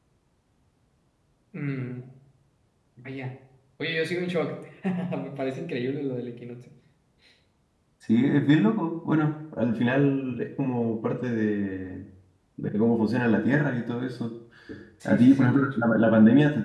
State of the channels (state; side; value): identical; both; correlation 1.00